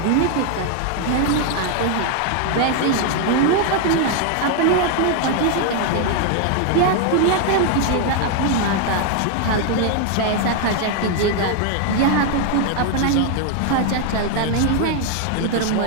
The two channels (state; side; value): different; both; correlation 0.00